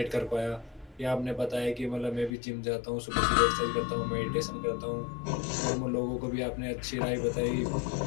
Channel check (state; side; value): drops out; right; at 2.3 s